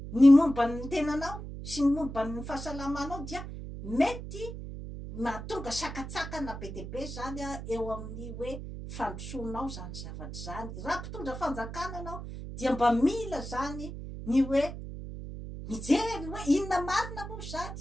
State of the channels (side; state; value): right; noise; hum, 9 dB below the sound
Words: ny momba ny tenanao sy ny momba ny fahasalamanao, dia mety mahatonga sakatsakana be dia be zany eo amin'ny hoe fandrosoanao zany zavatra zany. Raha mpitondra fanjakana anao dia mba mila zany ny hoe mijery hoe inona marina moa